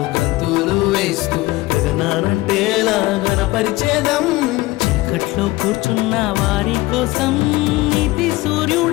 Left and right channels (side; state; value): right; quieter; 19.2 dB